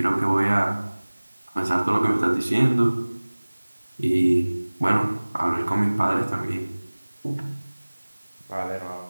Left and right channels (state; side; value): inverted; both; correlation -1.00